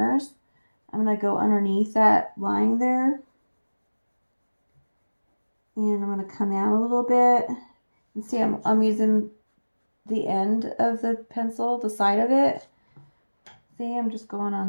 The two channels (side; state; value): both; inverted; correlation -1.00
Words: I'm going to go underneath that line there. And I'm going to come out a little bit. And see, I'm using the end of the pencil, the side of it. See, I'm just going